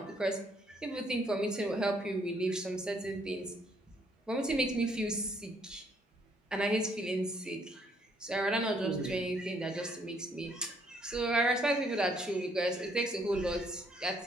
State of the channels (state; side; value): normal; both; correlation 0.68